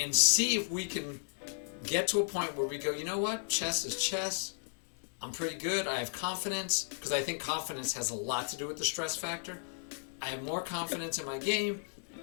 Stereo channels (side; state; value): right; silent; digital silence